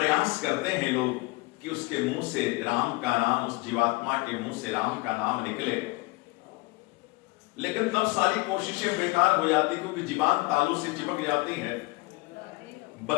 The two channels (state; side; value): quieter; right; 23.5 dB